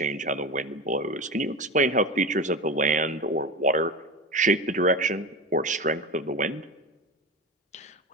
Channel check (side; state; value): both; normal; correlation 0.25